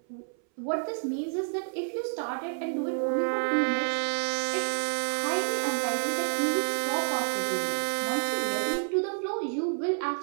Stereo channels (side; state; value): left; silent; 58 dB below the other